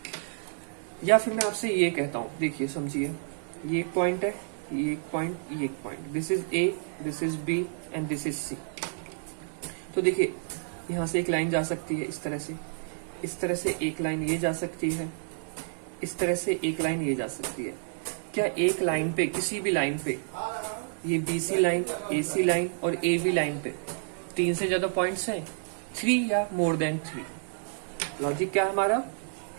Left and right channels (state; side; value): silent; left; digital silence